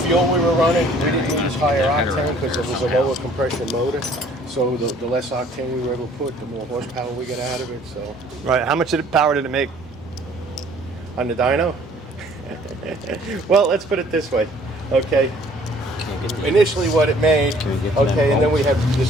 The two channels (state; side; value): normal; both; correlation 0.57